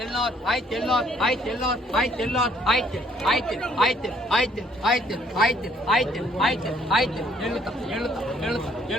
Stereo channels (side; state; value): both; normal; correlation 0.64